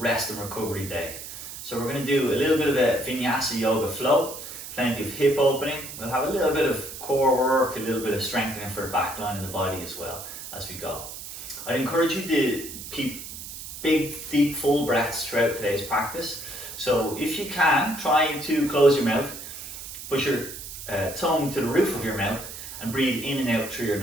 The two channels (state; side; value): noise; right; hiss, 11 dB below the sound